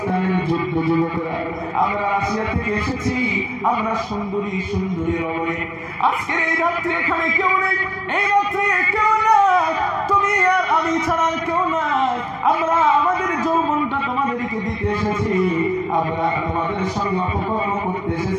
যুদ্ধ যুবকরা, আমরা রাশিয়া থেকে এসেছি, আমরা সুন্দরী সুন্দরী রমণী, আজকের এই রাত্রে এখানে কেউ নেই, এই রাত্রে কেউ নাই, তুমি আর আমি ছাড়া কেউ নাই, আমরা আমাদের যৌবনটা তোমাদেরকে দিতে এসেছি, আমরা তোমাদের সঙ্গে অপকর্ম করতে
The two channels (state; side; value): identical; both; correlation 1.00